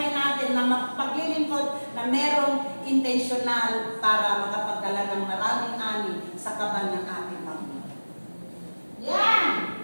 natin na mapaglilingkod na merong intentional para makapagdala ng maraming ani sa kaban ng ating Panginoon. Yan!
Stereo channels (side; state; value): both; inverted; correlation -1.00